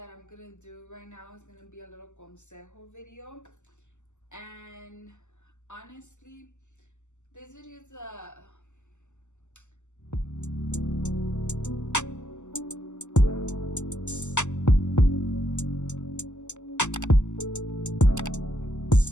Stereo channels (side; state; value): right; late; 0.84 ms